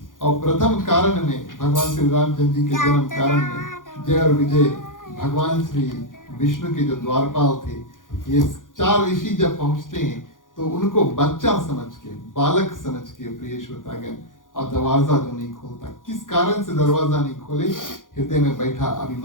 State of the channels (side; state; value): right; late; 0.89 ms